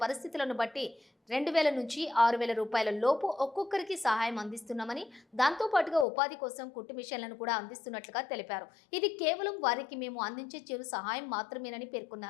పరిస్థితులను బట్టి ₹2,000 నుంచి ₹6,000 లోపు ఒక్కొక్కరికి సహాయం అందిస్తున్నామని, దాంతోపాటుగా ఉపాధి కోసం కుట్టు మిషన్లను కూడా అందిస్తున్నట్లుగా తెలిపారు. ఇది కేవలం వారికి మేము అందించే చిరు సహాయం మాత్రమేనని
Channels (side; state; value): right; drops out; at 6.1 s